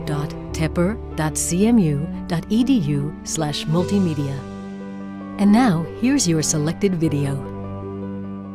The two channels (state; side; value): identical; both; correlation 1.00